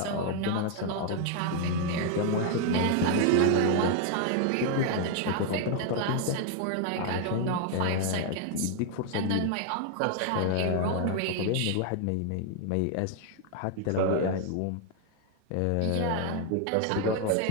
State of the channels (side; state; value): both; different; correlation 0.00